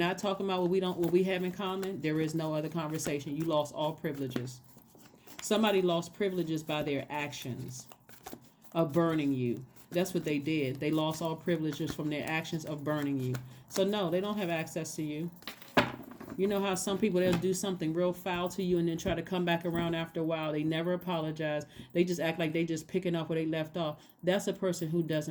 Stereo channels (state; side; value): identical; both; correlation 1.00